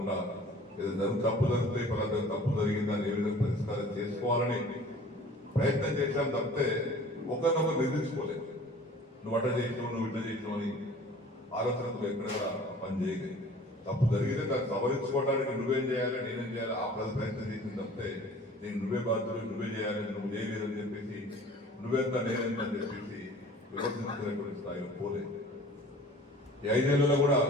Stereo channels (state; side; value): normal; both; correlation 0.46